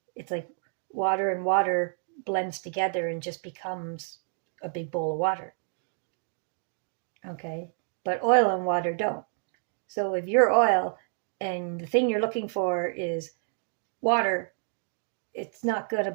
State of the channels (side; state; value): left; silent; 58 dB below the other